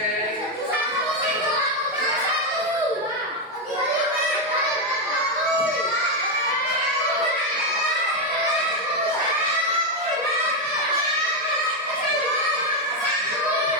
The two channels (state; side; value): normal; both; correlation 0.05